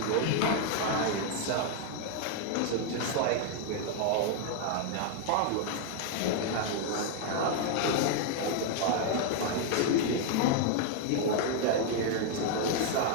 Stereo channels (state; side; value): different; both; correlation 0.00